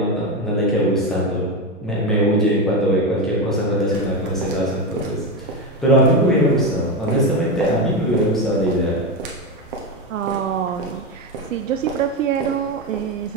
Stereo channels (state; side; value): normal; both; correlation 0.14